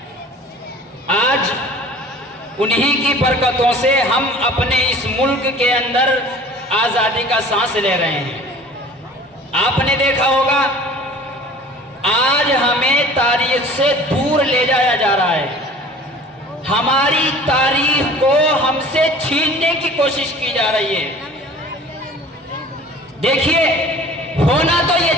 آج انہی کی برکتوں سے ہم اپنے اس ملک کے اندر آزادی کا سانس لے رہے ہیں۔ آپ نے دیکھا ہوگا، آج ہمیں تاریخ سے دور لے جایا جا رہا ہے، ہماری تاریخ کو ہم سے چھیننے کی کوشش کی جا رہی ہے۔ دیکھیے، ہونا تو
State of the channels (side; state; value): both; normal; correlation 0.45